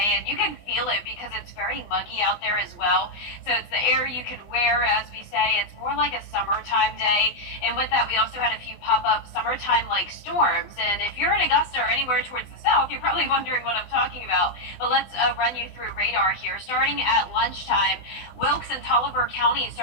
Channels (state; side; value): late; right; 20 ms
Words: and you can feel it because it's very muggy out there as well. So it's the air you can wear, as we say. It's more like a summertime day. And with that, we also had a few pop-up summertime-like storms. And if you're in Augusta or anywhere towards the south, you're probably wondering what I'm talking about. But let's run you through radar here. Starting at lunchtime, Wilkes and Tolliver County